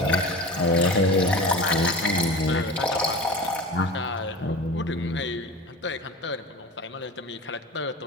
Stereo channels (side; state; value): both; normal; correlation 0.33